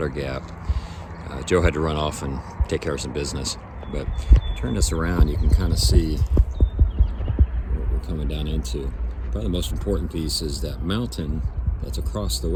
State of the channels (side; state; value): both; identical; correlation 1.00